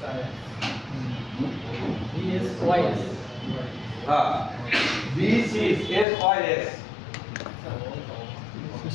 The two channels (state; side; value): drops out; right; at 6.1 s